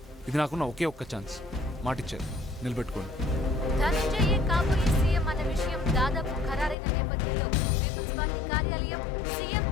ఇది నాకున్న ఒకే ఒక్క ఛాన్స్. మాటిచ్చారు, నిలబెట్టుకోండి. ధనంజయ్ కాబోయే సీఎం అన్న విషయం దాదాపు ఖరారైన నేపథ్యంలో పీపుల్స్ పార్టీ కార్యాలయం సీఎం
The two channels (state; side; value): drops out; right; at 6.8 s